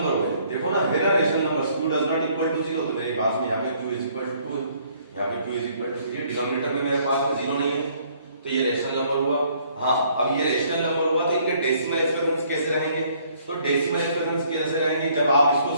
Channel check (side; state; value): both; inverted; correlation -0.63